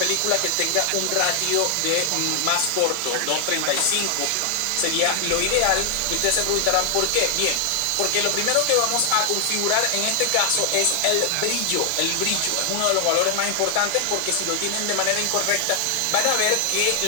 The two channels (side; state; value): both; different; correlation 0.00